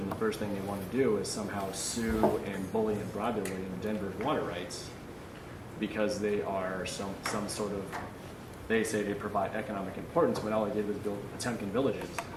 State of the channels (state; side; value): identical; both; correlation 1.00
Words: the first thing they want to do is somehow sue and bully and bribe their way into Denver's water rights because they are some sort of. They say they provide economic importance, when all they did was build Potemkin villages.